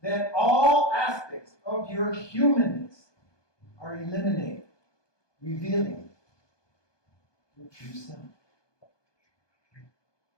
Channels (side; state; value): right; late; 1.2 ms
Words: all aspects of your humanness are eliminated, revealing your true self.